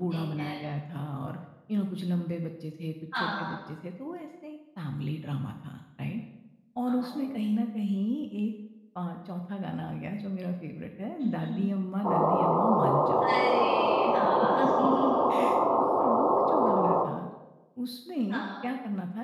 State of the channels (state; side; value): identical; both; correlation 1.00